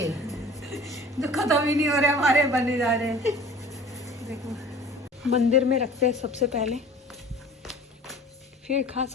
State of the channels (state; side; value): normal; both; correlation 0.45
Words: जो खत्म ही नहीं हो रहे हमारे, बने जा रहे हैं। देखो मंदिर में रखते हैं सबसे पहले, फिर खा